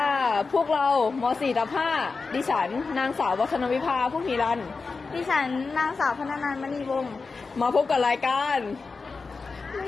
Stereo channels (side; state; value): right; quieter; 4.4 dB